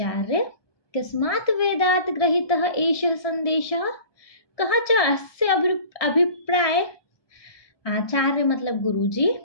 कस्मात् वेदात् ग्रहीतः एषः संदेशः, कः च अस्य अभिप्राय। आचार्य मतलब गुरुजी,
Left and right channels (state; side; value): late; right; 1.6 ms